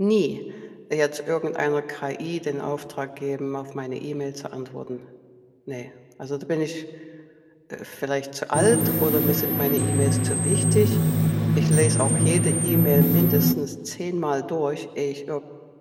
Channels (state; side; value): identical; both; correlation 1.00